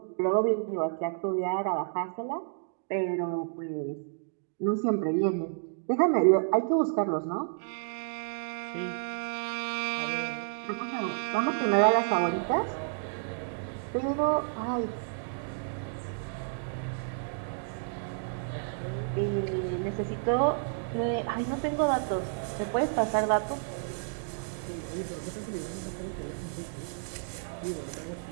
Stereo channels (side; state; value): left; silent; digital silence